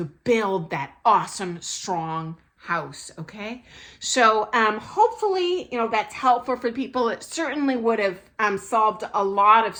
build that awesome, strong house, okay? So hopefully, that's helpful for people. It certainly would have solved a lot of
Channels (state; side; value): identical; both; correlation 1.00